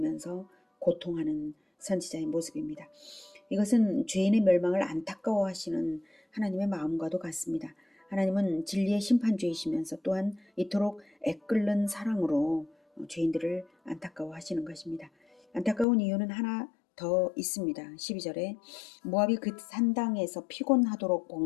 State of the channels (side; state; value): right; drops out; at 15.9 s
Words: 고통하는 선지자의 모습입니다. 이것은 죄인의 멸망을 안타까워하시는 하나님의 마음과도 같습니다. 하나님은 진리의 심판주이시면서 또한 이토록 애끓는 사랑으로 죄인들을 안타까워하시는 것입니다. 안타까운 이유는 하나 더 있습니다. 12절에 모압이 그 산당에서 피곤하도록